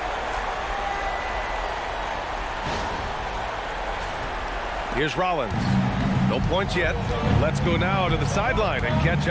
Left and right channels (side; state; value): both; identical; correlation 1.00